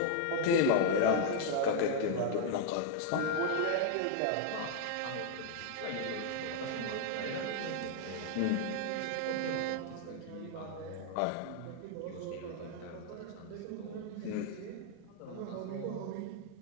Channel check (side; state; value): both; different; correlation 0.00